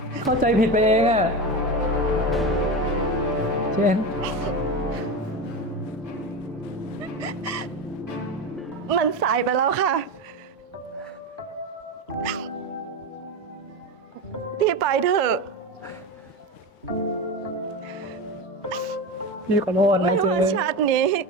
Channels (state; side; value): normal; both; correlation 0.22